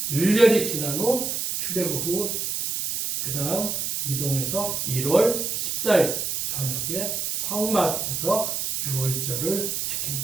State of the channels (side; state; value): right; noise; hiss, 2 dB below the sound